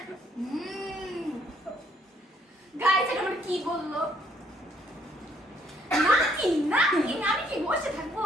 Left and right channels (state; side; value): normal; both; correlation 0.66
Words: গাইস এটা মানে কি বললো? নাকি নাকি আমি কি বসে থাকবো?